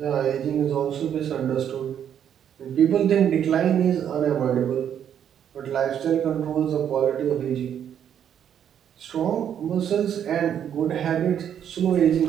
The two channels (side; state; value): left; quieter; 9.2 dB